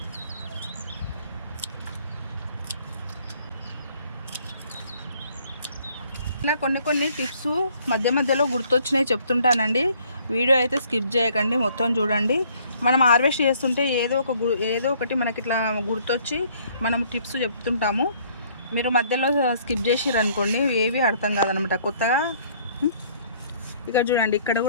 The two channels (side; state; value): both; inverted; correlation -0.61